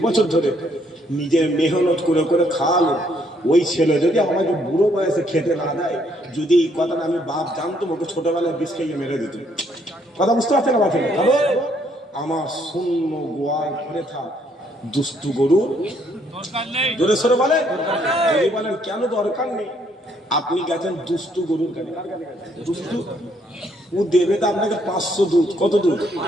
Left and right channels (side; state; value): both; normal; correlation 0.69